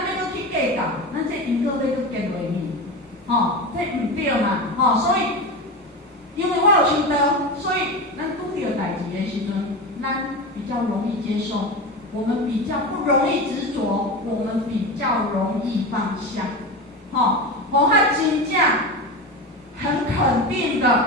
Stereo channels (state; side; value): normal; both; correlation 0.23